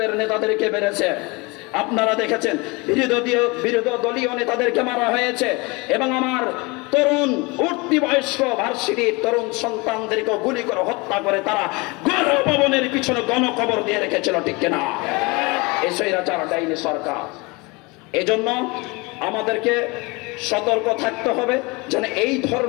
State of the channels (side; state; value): right; quieter; 26.4 dB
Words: নেতাদেরকে মেরেছে। আপনারা দেখেছেন, বিরোধী দলীয় নেতাদেরকে মারা হয়েছে, এবং আমার তরুণ উঠতি বয়স্ক ভার্সিটির তরুণ সন্তানদেরকে গুলি করে হত্যা করে তারা গণভবনের পিছনে গণকবর দিয়ে রেখেছিল, ঠিক কিনা? এই স্বৈরাচার ডাইনি সরকার। এজন্য আমাদেরকে সতর্ক থাকতে হবে যেন এই